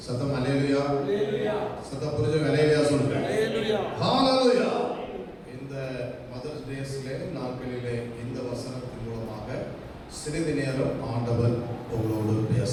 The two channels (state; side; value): identical; both; correlation 1.00